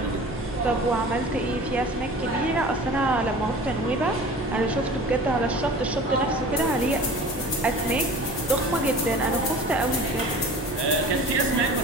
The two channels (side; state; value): both; normal; correlation 0.41